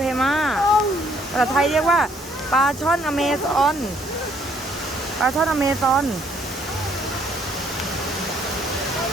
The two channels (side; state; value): both; normal; correlation 0.65